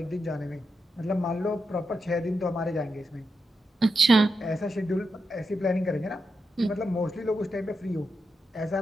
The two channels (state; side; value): normal; both; correlation 0.86